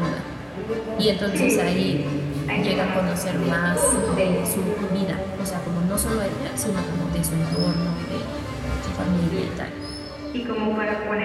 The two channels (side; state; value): both; identical; correlation 1.00